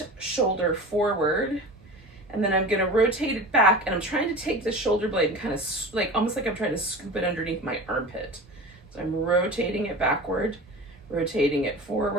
shoulder forward, and then I'm gonna rotate it back, and I'm trying to take the shoulder blade and kind of almost like I'm trying to scoop it underneath my armpit. So I'm rotating it backward, rotating it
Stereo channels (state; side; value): normal; both; correlation 0.34